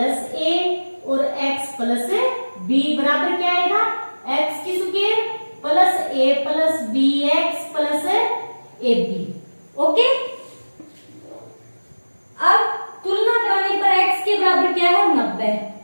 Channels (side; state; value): both; inverted; correlation -1.00